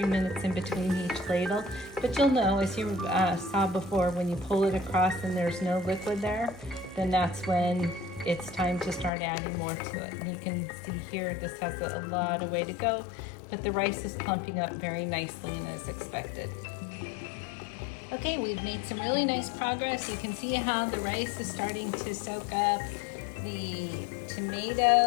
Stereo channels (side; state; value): right; drops out; at 9.1 s